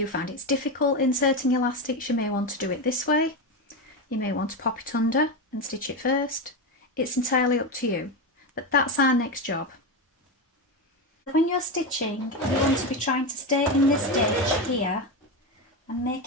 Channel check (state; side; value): normal; both; correlation 0.15